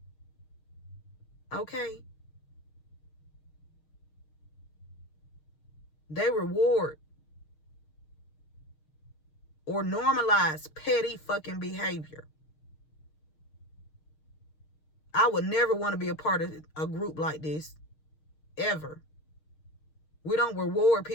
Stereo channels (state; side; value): late; right; 6.5 ms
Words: Okay. They reward or normalize petty fucking behavior. I would never want to be a part of a group like this. Ever. We don't reward